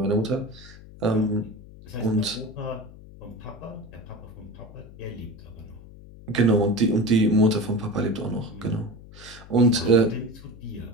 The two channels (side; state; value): left; noise; hum, 18 dB below the sound